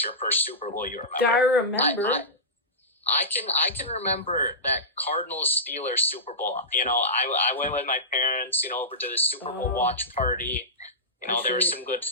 your first Super Bowl you remember. I remember. I can remember that Cardinals-Steelers Super Bowl. I went with my parents, over to the Super Bowl watch party. There was some good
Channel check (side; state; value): both; normal; correlation -0.16